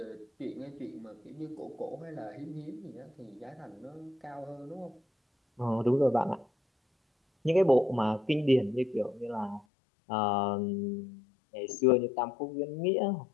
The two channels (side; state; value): right; drops out; at 9.7 s